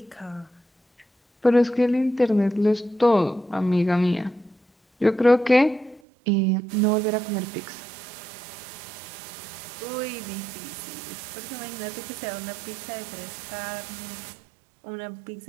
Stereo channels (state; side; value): drops out; left; at 6.0 s